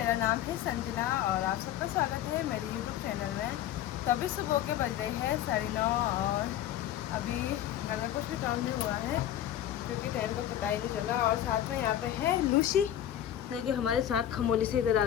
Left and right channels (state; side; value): quieter; right; 11.5 dB